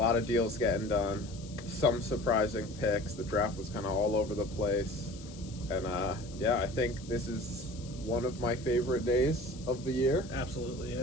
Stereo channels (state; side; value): noise; left; hiss, 19 dB below the sound